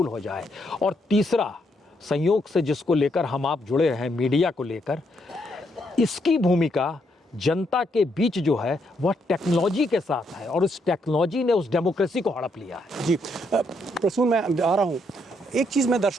हो जाए। और तीसरा, संयोग से जिसको लेकर हम आप जुड़े हैं, मीडिया को लेकर, इसकी भूमिका जनता के बीच जो है वह टेक्नोलॉजी के साथ है और उस टेक्नोलॉजी ने उस डेमोक्रेसी को हड़प लिया है। जी प्रसून, मैं आ रहा हूँ। एक चीज़ मैं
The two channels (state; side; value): normal; both; correlation 0.75